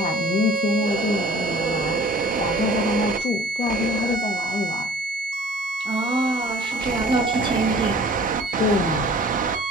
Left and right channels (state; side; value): normal; both; correlation 0.49